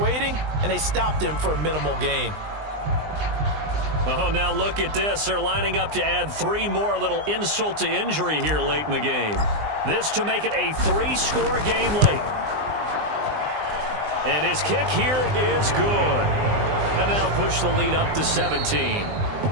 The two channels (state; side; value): late; left; 20 ms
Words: and they stopped him for a minimal gain. Oh, now look at this. They're lining up to add 3 more, little insult to injury here late in the game. This to make it a 3-score game late. And his kick here is good. And that'll push the lead up to 17.